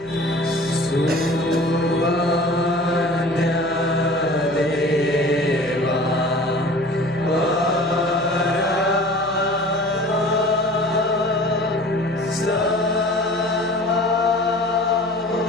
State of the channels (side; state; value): left; noise; hum, 23 dB below the sound